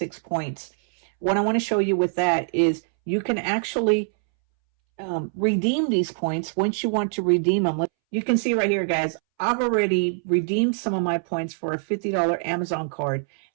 points. What I want to show you with that is you can actually redeem these points once you want to redeem them. You can see right here, guys, I've already redeemed some of my points for a $50 Amazon card.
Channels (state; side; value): silent; left; 63 dB below the other